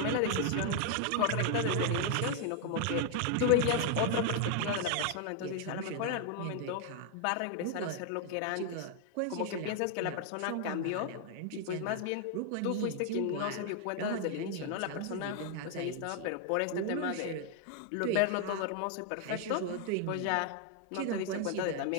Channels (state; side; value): different; both; correlation 0.00